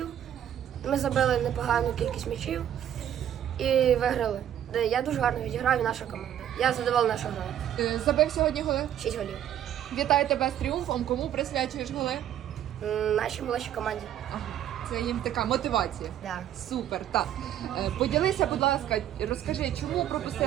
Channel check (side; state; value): left; quieter; 10.7 dB